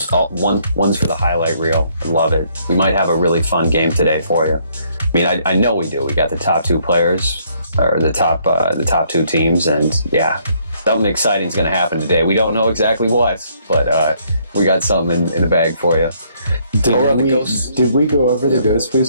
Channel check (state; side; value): inverted; both; correlation -0.68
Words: all one's for the highlight reel. I love it. We might have a really fun game today for you. I mean, I know we do. We got the top two players, or the top two teams, and yeah, something exciting is going to happen today. We don't know exactly what, but we got something in the bag for you. Did we go over the